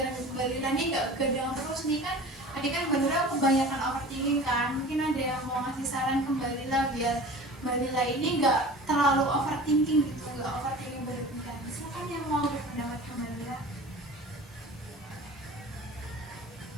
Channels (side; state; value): both; normal; correlation 0.40